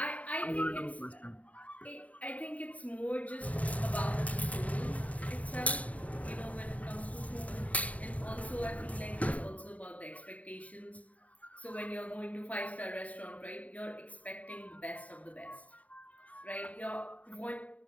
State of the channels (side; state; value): right; late; 0.069 ms